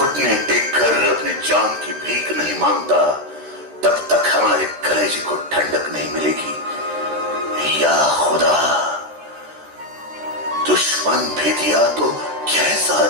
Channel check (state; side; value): late; left; 13 ms